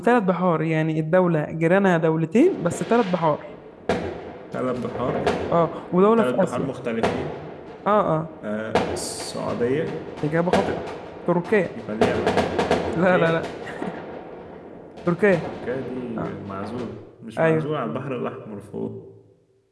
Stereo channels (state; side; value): identical; both; correlation 1.00